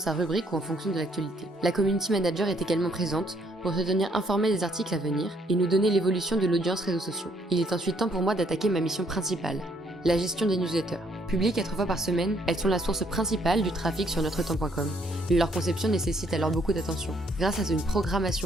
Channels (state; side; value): normal; both; correlation 0.68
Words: rubrique ou en fonction de l'actualité. La community manager est également présente pour se tenir informée des articles à venir et nous donner l'évolution de l'audience réseaux sociaux. Il est ensuite temps pour moi d'attaquer ma mission principale, la gestion des newsletters. Publiées 4 fois par semaine, elles sont la source principale du trafic sur NotreTemps.com. Leur conception nécessite alors beaucoup d'attention. Grâce à une